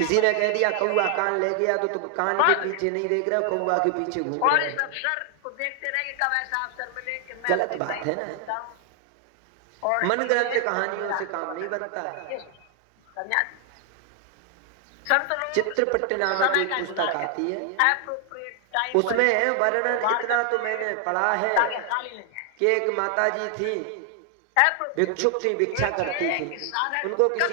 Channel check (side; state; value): both; different; correlation 0.00